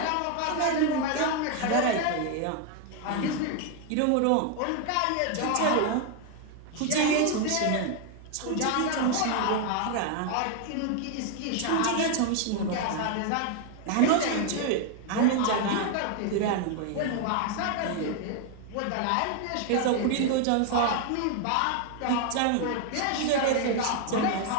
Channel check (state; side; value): different; both; correlation 0.00